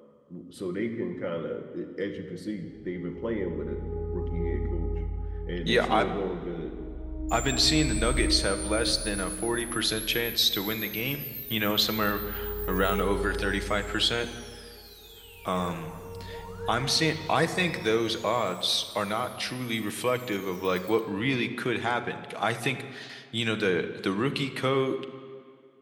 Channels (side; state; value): both; identical; correlation 1.00